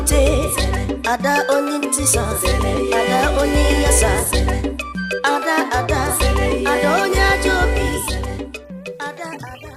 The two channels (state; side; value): identical; both; correlation 1.00